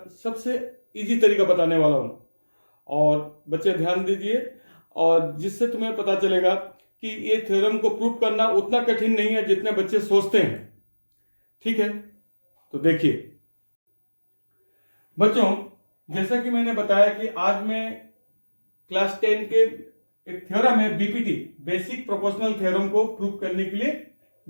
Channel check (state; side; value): inverted; both; correlation -1.00